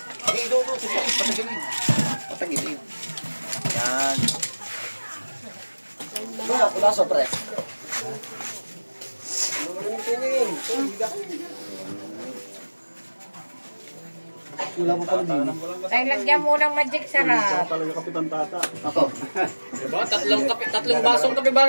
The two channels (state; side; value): inverted; both; correlation -1.00